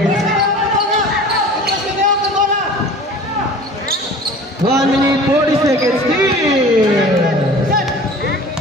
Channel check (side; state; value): both; normal; correlation 0.42